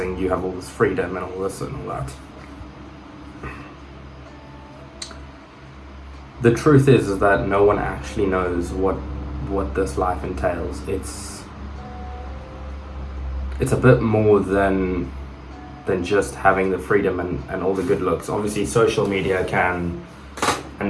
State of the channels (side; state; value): both; identical; correlation 1.00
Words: You have all this freedom and all this and all that. The truth is that no one actually knows what this life entails. It's a bit more than just having the freedom and all the good looks. Obviously, social media can